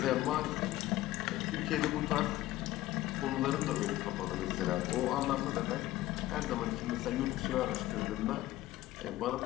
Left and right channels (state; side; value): quieter; right; 15.9 dB